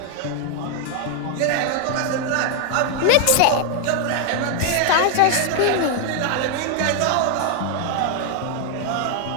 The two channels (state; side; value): different; both; correlation 0.00